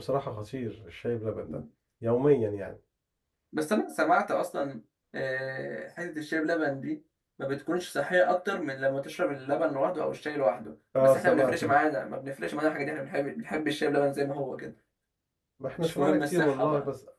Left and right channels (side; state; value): both; identical; correlation 1.00